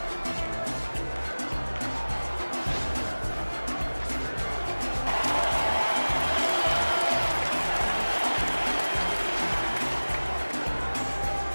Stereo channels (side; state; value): both; inverted; correlation -1.00